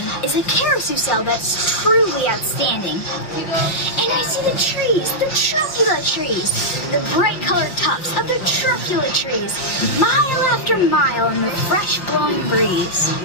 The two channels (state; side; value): late; right; 5.7 ms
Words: is a carousel that's truly outstanding. And I see the trees, the truculent trees, the bright colored tops of the truculent trees, mile after mile in the fresh blowing breeze.